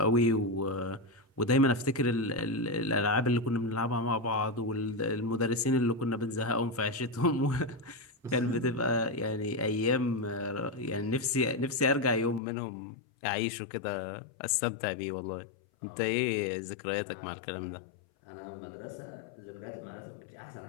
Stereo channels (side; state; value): right; drops out; at 12.4 s